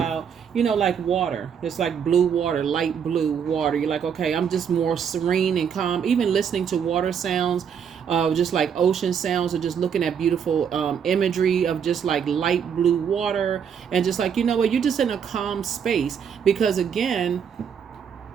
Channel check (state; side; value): quieter; left; 7.5 dB